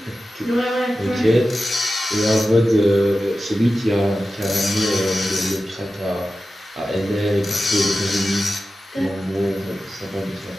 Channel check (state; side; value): normal; both; correlation 0.93